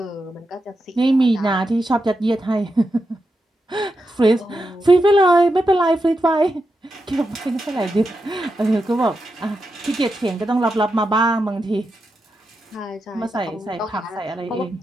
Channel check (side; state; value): both; normal; correlation 0.87